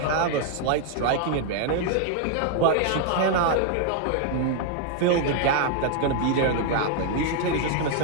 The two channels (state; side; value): different; both; correlation 0.00